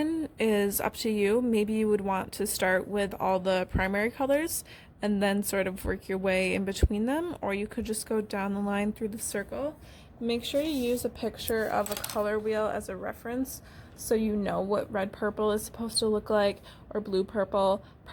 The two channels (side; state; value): both; identical; correlation 1.00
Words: is up to you. Maybe you would want to start with all the primary colors and then sort of work your way in between them, or you could just go down the line through the circle. Make sure you use a picture of a color wheel as a reference so you know what red purple is supposed to look like, or blue purple.